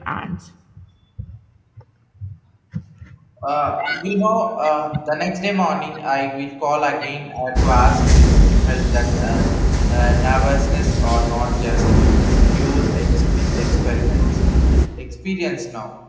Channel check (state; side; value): identical; both; correlation 1.00